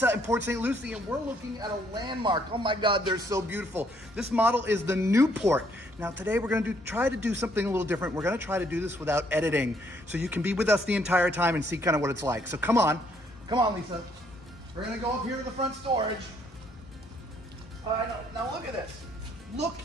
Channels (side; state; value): both; normal; correlation 0.68